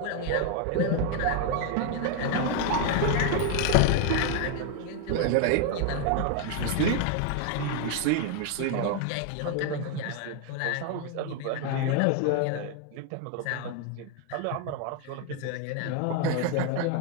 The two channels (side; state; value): both; different; correlation 0.01